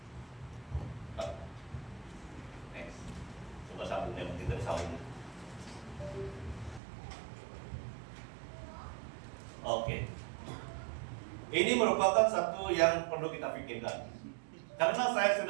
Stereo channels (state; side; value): drops out; left; at 6.8 s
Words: Next. Coba sambungnya, kita disambung. Oke. Ini merupakan satu yang perlu kita pikirkan. Karena saya